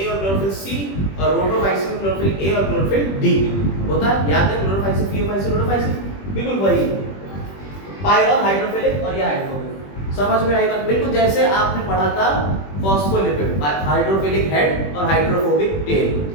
और क्लोरोफिल सी, और रोटोफाइसिन में क्लोरोफिल ए और क्लोरोफिल डी होता है। याद है? क्लोरोफाइसिन, थियोफाइसिन, रोटोफाइसिन, बिल्कुल वही। पायरॉल हाइड्रोफिलिक और ये हाइड्रोफोबिक। समझ में आई बात? बिल्कुल जैसे आपने पढ़ा था फॉस्फोलिपिड, हाइड्रोफिलिक हेड और हाइड्रोफोबिक टेल,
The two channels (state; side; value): late; right; 21 ms